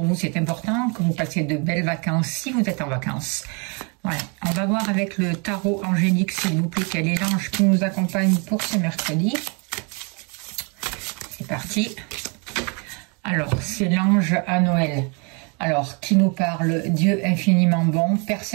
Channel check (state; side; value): quieter; left; 33.9 dB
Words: vous, c'est important, que vous passez de belles vacances si vous êtes en vacances. Voilà, on va voir avec le tarot angélique, s'il vous plaît, quel est l'ange qui nous accompagne pour ce mercredi. C'est parti. Alors, c'est l'ange à Noël. Alors, qui nous parle? Dieu infiniment bon,